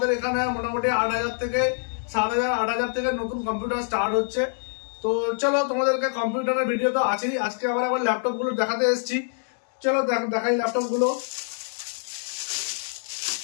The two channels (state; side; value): silent; right; 61 dB below the other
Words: এখানে মোটামুটি 8,000 থেকে 7,000, 8,000 থেকে নতুন কম্পিউটার স্টার্ট হচ্ছে। তো চলো, তোমাদেরকে কম্পিউটারের ভিডিও তো আছেই, আজকে আবার ল্যাপটপ গুলো দেখাতে এসেছি। চলো দেখাই ল্যাপটপ গুলো।